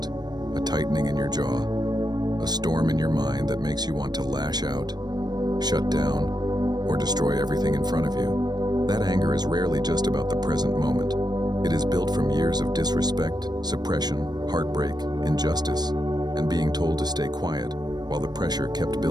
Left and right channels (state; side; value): late; left; 0.20 ms